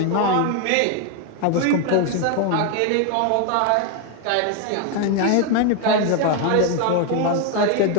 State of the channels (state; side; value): different; both; correlation 0.01